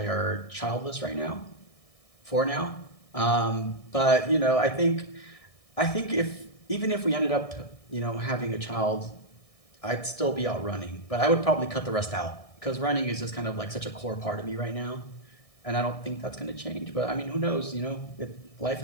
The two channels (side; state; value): right; late; 1.6 ms